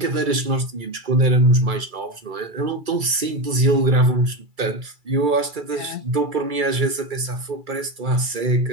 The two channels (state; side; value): late; left; 2.3 ms